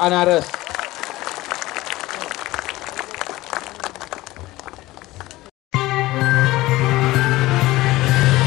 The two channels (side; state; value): right; quieter; 18.3 dB